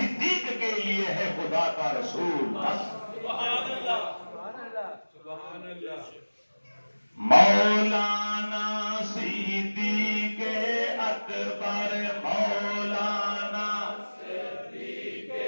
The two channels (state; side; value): inverted; both; correlation -1.00